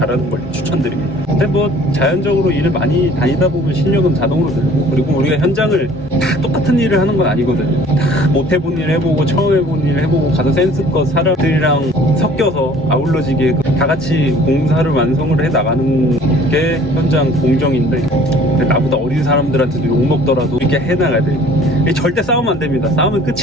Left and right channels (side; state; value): both; normal; correlation 0.52